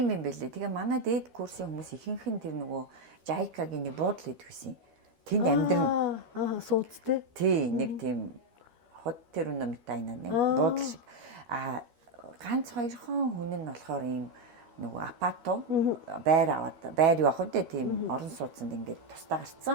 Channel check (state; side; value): late; left; 12 ms